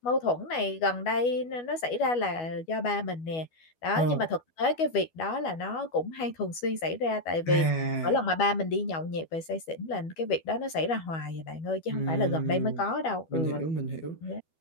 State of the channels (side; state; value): right; late; 12 ms